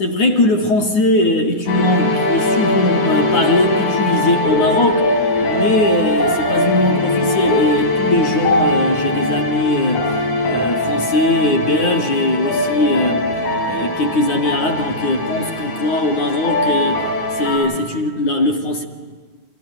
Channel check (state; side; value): late; right; 9.6 ms